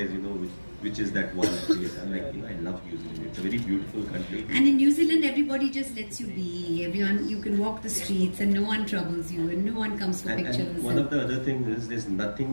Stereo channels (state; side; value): inverted; both; correlation -1.00